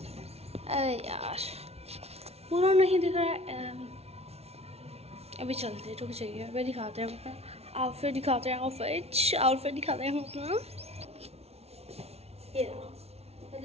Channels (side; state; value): left; late; 0.30 ms